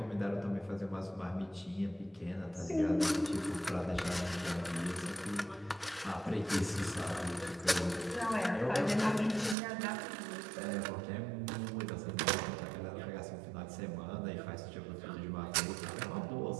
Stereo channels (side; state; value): left; drops out; at 9.6 s